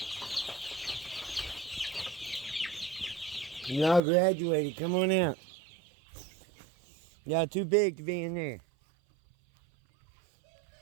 Y'all graduated. Come on out. Y'all too big to be in there.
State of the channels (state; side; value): drops out; left; at 4.0 s